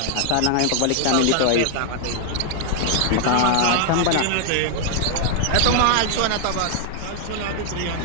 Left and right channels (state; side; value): different; both; correlation 0.00